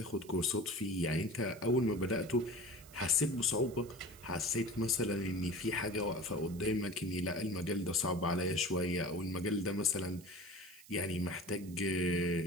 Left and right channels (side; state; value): right; noise; hiss, 21 dB below the sound